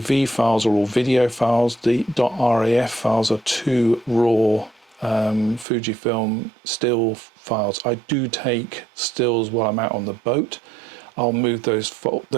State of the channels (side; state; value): left; drops out; at 5.7 s